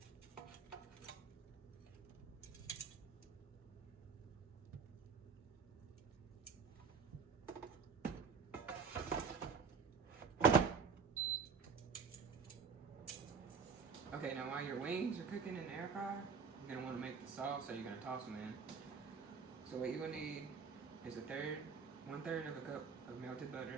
Okay, now while your wings are cooking in the air fryer, you're gonna want to make the sauce, so you're gonna toss them in. So what you're gonna need is 1/3 of a cup of melted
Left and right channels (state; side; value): quieter; left; 5.7 dB